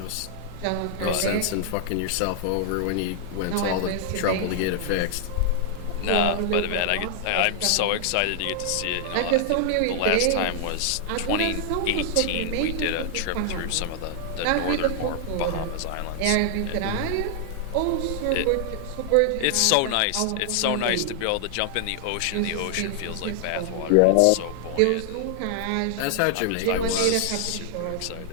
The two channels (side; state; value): both; different; correlation 0.00